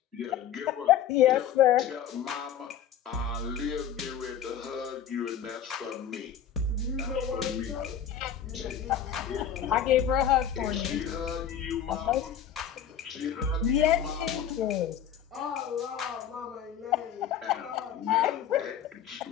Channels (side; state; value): right; quieter; 9.1 dB